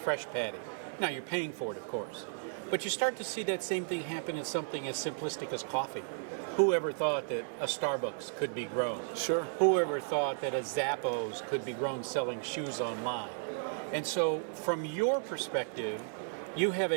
patty. Now you're paying for it, of course. But you start to see that same thing happen in something as simplistic as coffee. Whoever thought that a Starbucks could be grown? Sure. Whoever thought that a Zappos could be grown selling shoes online? And so from your perspective, you have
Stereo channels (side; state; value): left; silent; digital silence